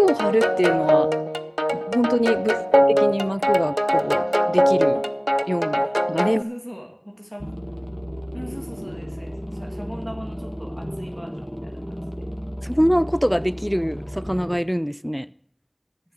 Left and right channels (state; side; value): identical; both; correlation 1.00